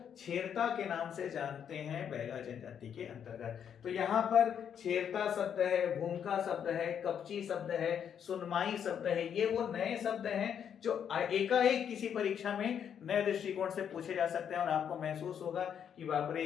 छेरता के नाम से जानते हैं बैगा जनजाति के अंतर्गत। तो यहाँ पर छेरता शब्द है, भूमिका शब्द है, कपची शब्द है, सुनमाई शब्द है, ये वो नए शब्द हैं जो एकाएक किसी परीक्षा में नए दृष्टिकोण से पूछे जा सकते हैं और आपको महसूस होगा कि बाप रे,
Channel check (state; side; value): quieter; right; 8.4 dB